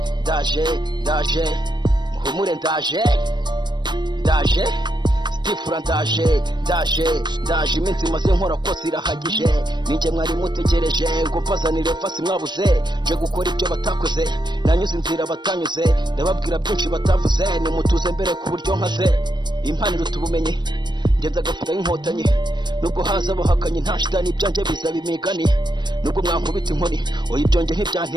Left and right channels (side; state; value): left; late; 0.22 ms